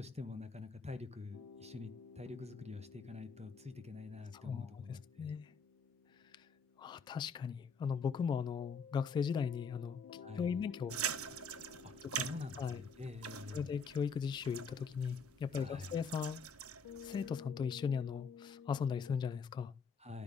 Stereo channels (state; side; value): quieter; right; 4.6 dB